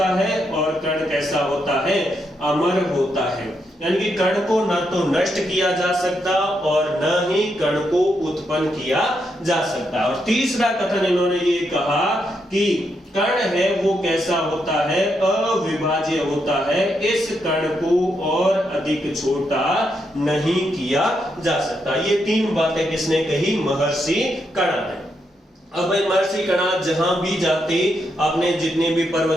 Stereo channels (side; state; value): both; normal; correlation 0.81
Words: है और कण कैसा होता है? अमर होता है। यानी कि कण को न तो नष्ट किया जा सकता और न ही कण को उत्पन्न किया जा सकता। और तीसरा कथन इन्होंने ये कहा कि कण है वो कैसा होता है? अविभाज्य होता है। इस कण को और अधिक छोटा नहीं किया जा सकता। ये 3 बातें किसने कही? महर्षि कणाद ने। अब भाई महर्षि कणाद जहां भी जाते, आपने जितने भी